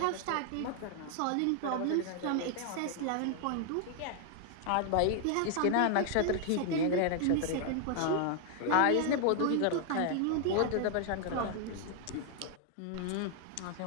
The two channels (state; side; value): different; both; correlation 0.00